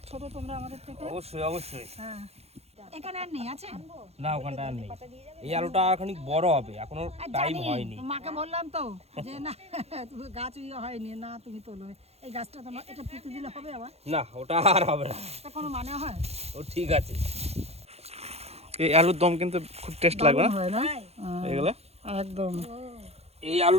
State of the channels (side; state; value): left; late; 0.30 ms